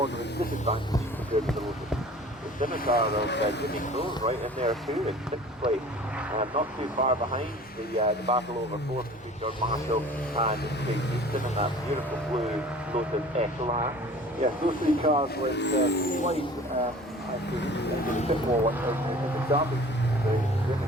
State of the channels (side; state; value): both; normal; correlation 0.46